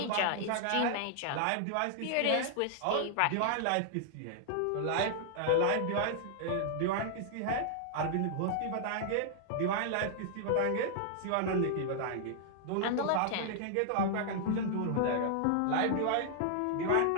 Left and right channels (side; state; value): both; different; correlation -0.01